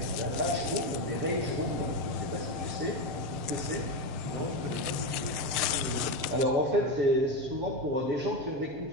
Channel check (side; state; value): left; late; 6.7 ms